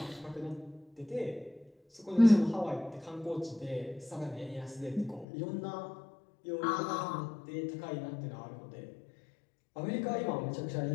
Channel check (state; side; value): drops out; right; at 5.2 s